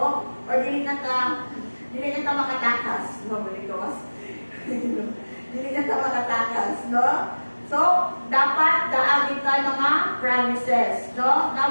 Or dili na ta makatakas, no? Dili na ta makatakas, no? So, dapat daagin tayo mga promises, no?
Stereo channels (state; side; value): inverted; both; correlation -1.00